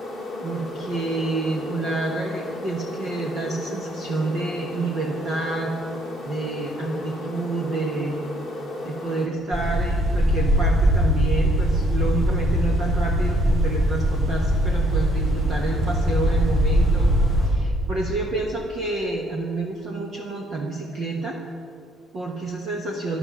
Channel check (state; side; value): normal; both; correlation 0.67